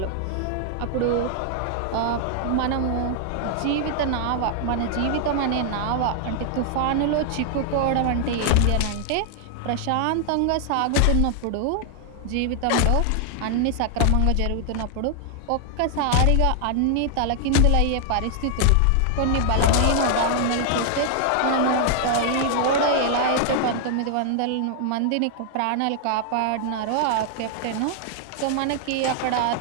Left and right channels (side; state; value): both; different; correlation 0.00